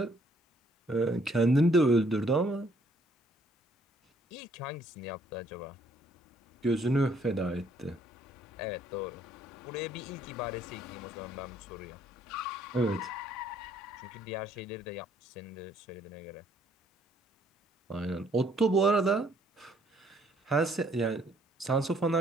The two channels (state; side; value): normal; both; correlation 0.65